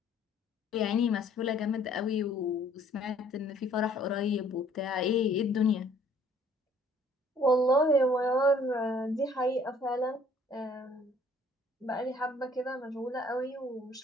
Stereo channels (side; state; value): both; normal; correlation 0.58